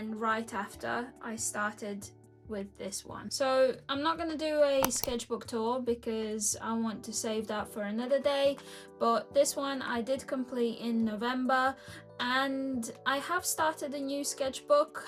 right after I started with this one. So I'm not going to do a sketchbook tour because I want to save that for another day, but this one I did complete in November, and I have started a new sketchbook.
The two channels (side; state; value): both; identical; correlation 1.00